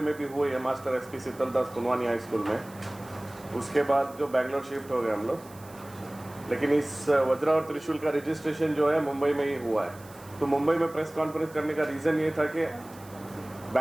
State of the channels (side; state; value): right; noise; hiss, 22 dB below the sound